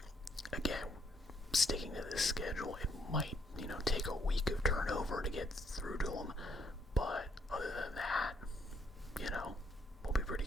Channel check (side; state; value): both; normal; correlation 0.70